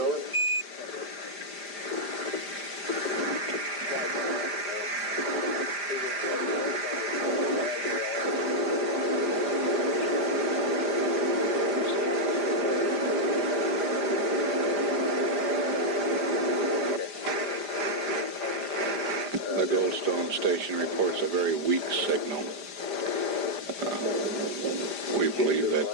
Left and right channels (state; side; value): late; left; 5.0 ms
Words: The Goldstone station reports a very weak signal. We believe